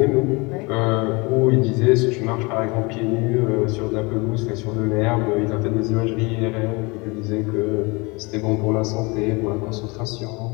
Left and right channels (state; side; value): quieter; right; 26.9 dB